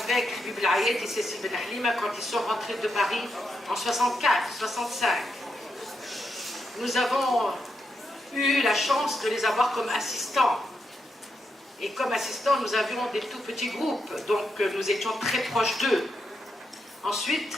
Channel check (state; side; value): normal; both; correlation 0.83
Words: avec Habib Al-Ayed et Cécile Ben Halima quand ils sont rentrés de Paris en 64, 65. Nous avons eu la chance de les avoir comme assistants. Et comme assistants, nous avions des tout petits groupes, donc nous étions très proches d'eux. Ensuite,